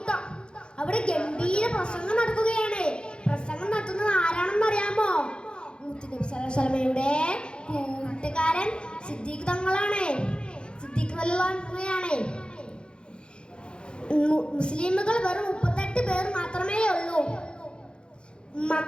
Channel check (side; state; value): right; late; 0.053 ms